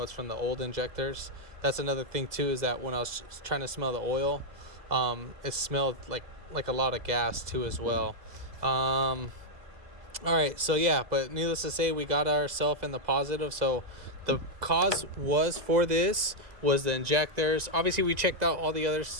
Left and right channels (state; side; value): late; left; 2.0 ms